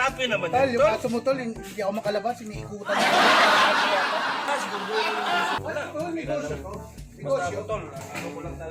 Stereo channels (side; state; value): both; identical; correlation 1.00